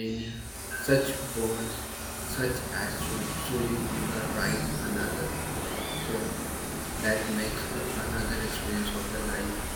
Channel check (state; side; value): identical; both; correlation 1.00